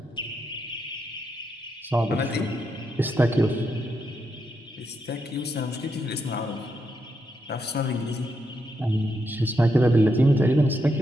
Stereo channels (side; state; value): both; normal; correlation 0.82